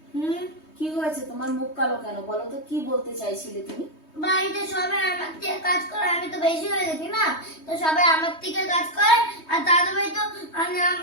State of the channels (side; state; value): right; late; 3.2 ms